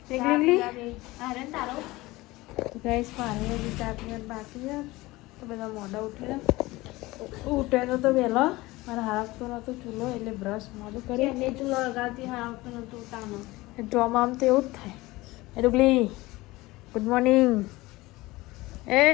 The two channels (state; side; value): quieter; right; 20.1 dB